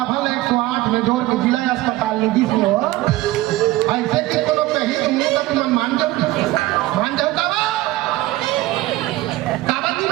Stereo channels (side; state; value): left; quieter; 17.5 dB